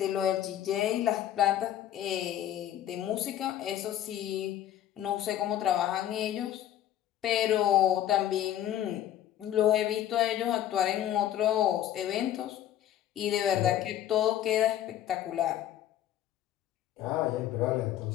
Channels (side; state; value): right; quieter; 11.7 dB